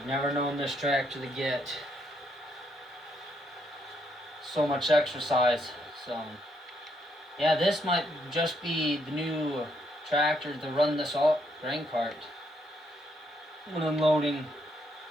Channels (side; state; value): both; normal; correlation 0.74